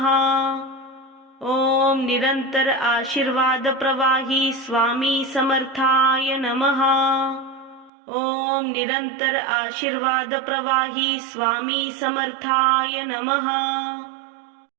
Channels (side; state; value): left; drops out; at 7.9 s